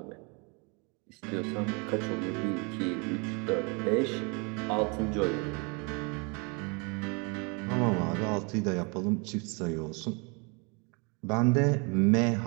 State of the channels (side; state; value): left; quieter; 32.2 dB